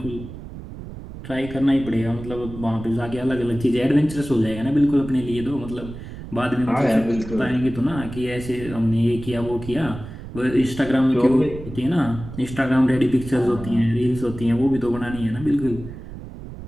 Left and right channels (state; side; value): noise; right; rumble, 12 dB below the sound